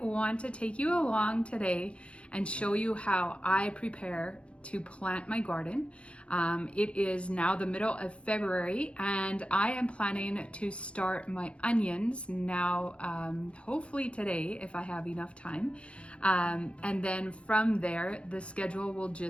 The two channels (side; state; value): right; late; 0.060 ms